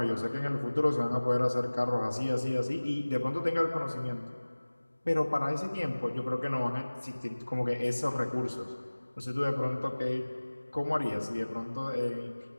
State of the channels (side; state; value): both; inverted; correlation -1.00